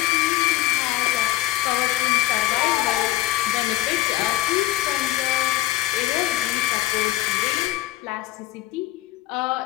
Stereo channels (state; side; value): quieter; right; 16.1 dB